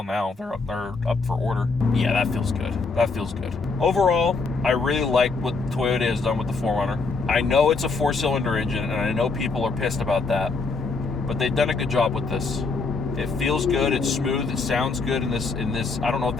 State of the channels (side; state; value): right; quieter; 4.2 dB